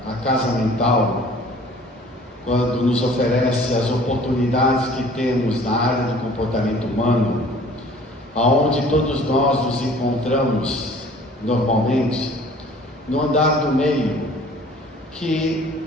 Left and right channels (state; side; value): normal; both; correlation 0.50